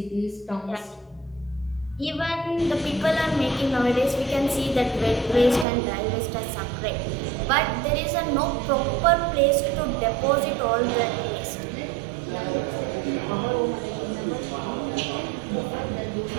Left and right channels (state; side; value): drops out; left; at 5.7 s